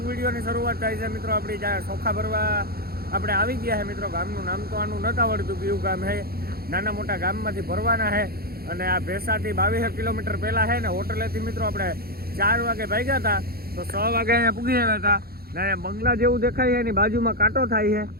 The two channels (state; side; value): late; left; 0.44 ms